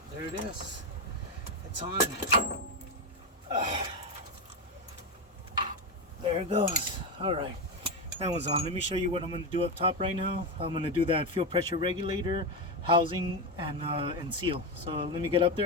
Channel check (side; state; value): both; normal; correlation 0.12